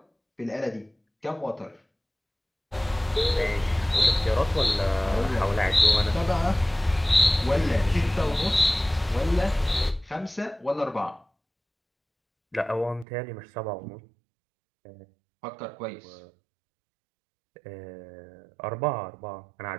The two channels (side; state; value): left; drops out; at 13.1 s